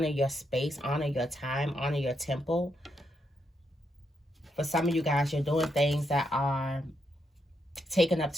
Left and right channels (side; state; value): both; normal; correlation 0.80